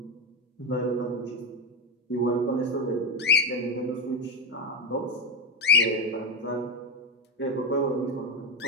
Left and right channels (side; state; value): both; normal; correlation 0.09